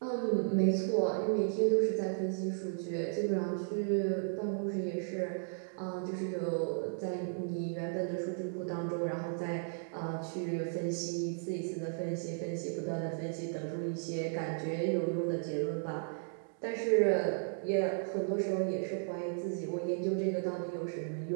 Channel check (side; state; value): left; silent; digital silence